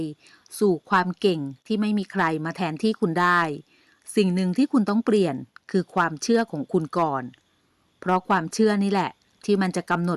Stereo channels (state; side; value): identical; both; correlation 1.00